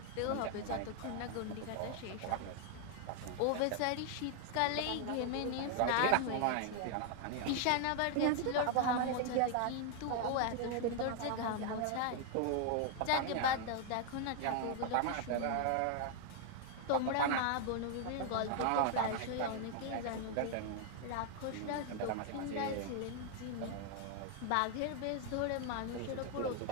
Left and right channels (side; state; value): both; different; correlation 0.00